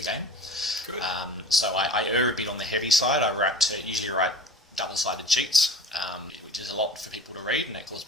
game. Good. So I err a bit on the heavy side. I usually write double-sided sheets, which is a lot for people to read, and that causes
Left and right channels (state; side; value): normal; both; correlation 0.39